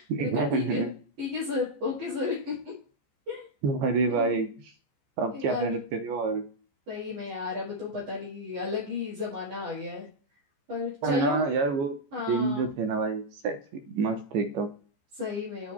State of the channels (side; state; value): left; late; 14 ms